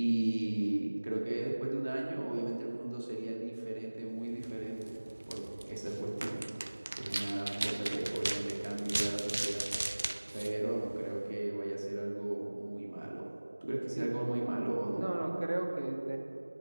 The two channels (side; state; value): both; inverted; correlation -1.00